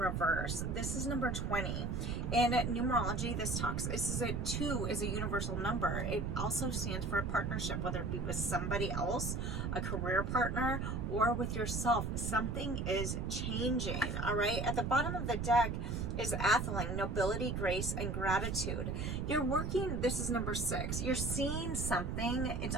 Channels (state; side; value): noise; right; rumble, 2 dB below the sound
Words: This is number 20. In numerology, this is 2 is a universal number. It also stands for a partnership, whether it be with somebody else, a career partner, or with yourself. Something is changing, all right? At the bottom of the deck is Atheling, nobility, grace, and gratitude. You're working, this is number 6. You're seeing something. It's